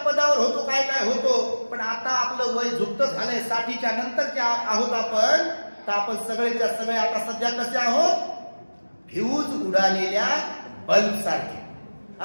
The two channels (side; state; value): both; inverted; correlation -1.00